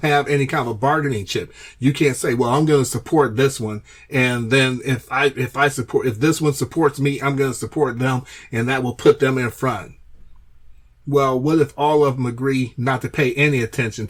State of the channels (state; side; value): identical; both; correlation 1.00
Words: have any kind of a bargaining chip. You can't say, well, I'm going to support this one, and then if this one supports me, I'm going to support them, and that will put them in front. Well, what if all of them agree not to pay any attention